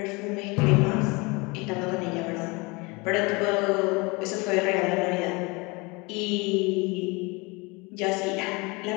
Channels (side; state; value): right; quieter; 26.5 dB